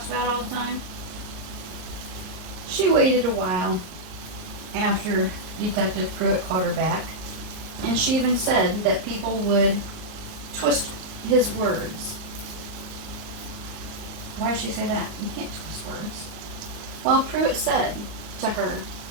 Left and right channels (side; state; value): left; late; 38 ms